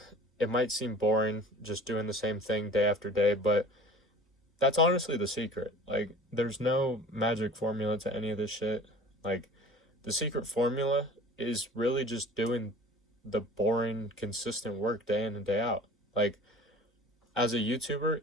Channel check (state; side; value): normal; both; correlation 0.43